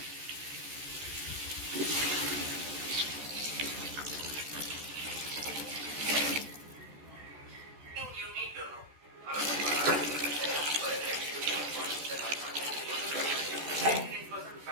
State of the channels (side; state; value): left; late; 14 ms